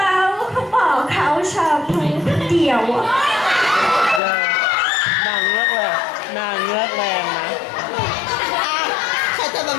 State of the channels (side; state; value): right; drops out; at 4.2 s